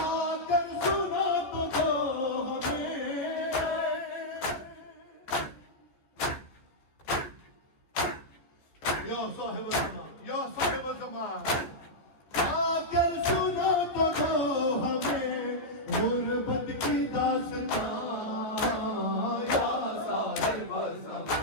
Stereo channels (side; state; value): right; late; 14 ms